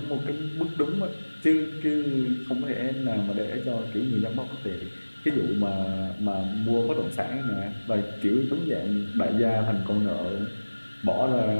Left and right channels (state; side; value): inverted; both; correlation -1.00